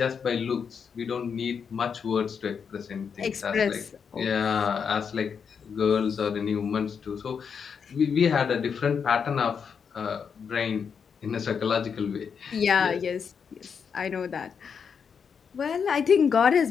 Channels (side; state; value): right; quieter; 6.6 dB